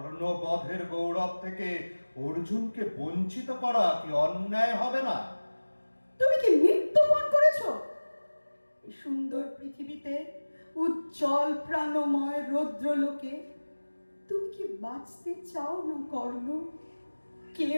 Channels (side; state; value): both; inverted; correlation -1.00